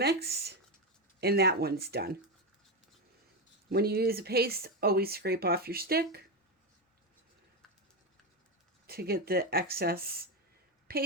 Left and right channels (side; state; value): both; normal; correlation 0.11